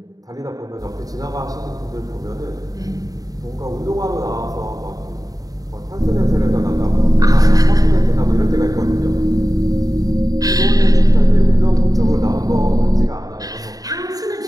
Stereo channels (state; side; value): late; left; 0.18 ms